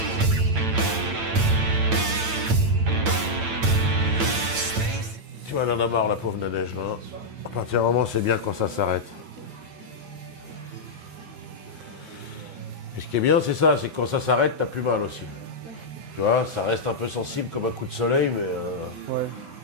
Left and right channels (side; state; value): left; late; 8.9 ms